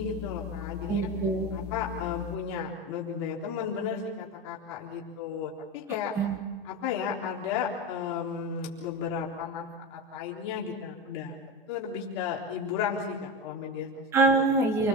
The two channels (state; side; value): normal; both; correlation 0.20